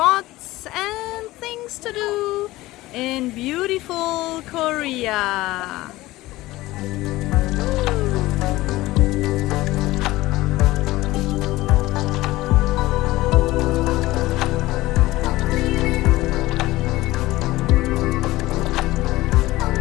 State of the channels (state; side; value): quieter; right; 18.0 dB